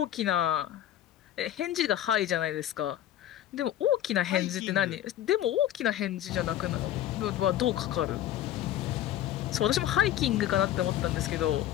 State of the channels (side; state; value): right; quieter; 12.2 dB